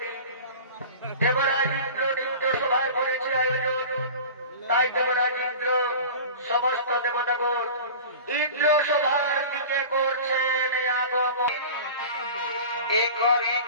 দেবরাজ ইন্দ্র নিত্য সভায় করেছে আয়োজন। তাই দেবরাজ ইন্দ্র সমস্ত দেবতাগণ ইন্দ্র সভার দিকে করছেন আগমন। এ করে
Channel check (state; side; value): inverted; both; correlation -0.37